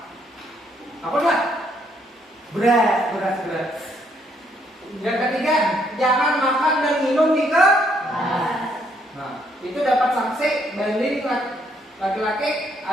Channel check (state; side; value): normal; both; correlation 0.71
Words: Apa enggak? Berat. Yang ketiga, jangan makan dan minum di kelas. Nah, itu dapat sanksi banding laki-laki